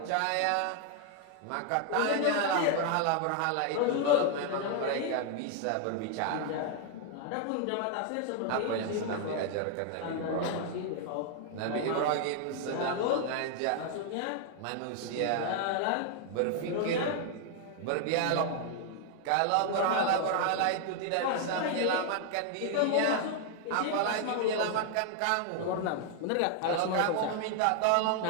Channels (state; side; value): different; both; correlation 0.00